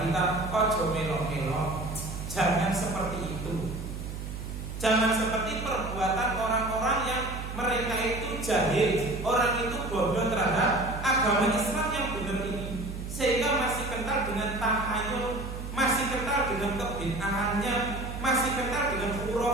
kita, ojo melo-melo, jangan seperti itu. Jangan seperti perbuatan orang-orang yang mereka itu jahil, orang itu bodoh terhadap agama Islam yang benar ini, sehingga masih kental dengan tahayul, masih kental dengan kebid'ahannya, masih kental dengan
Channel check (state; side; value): noise; right; hum, 7 dB below the sound